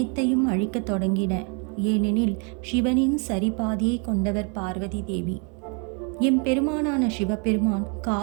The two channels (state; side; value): quieter; left; 36.8 dB